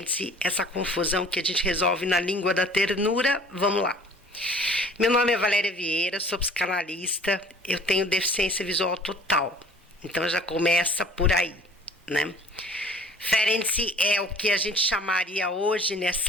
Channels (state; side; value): normal; both; correlation 0.50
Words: essa confusão que a gente resolve na língua da ternura. Vamos lá. Meu nome é Valéria Vieira, sou psicanalista, eu tenho deficiência visual total. Então já começa por aí, né? Ferenczi é o que a gente chamaria hoje,